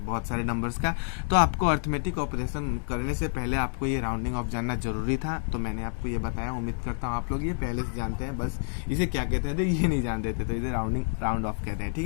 बहुत सारे नंबर्स का। तो आपको अर्थमेटिक ऑपरेशन करने से पहले आपको ये राउंडिंग ऑफ जानना जरूरी था, तो मैंने आपको ये बताया। उम्मीद करता हूँ आप लोग ये पहले से जानते हैं, बस इसे क्या कहते हैं तो ये नहीं जानते थे, तो इसे राउंड ऑफ कहते हैं, ठीक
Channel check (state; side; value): silent; right; digital silence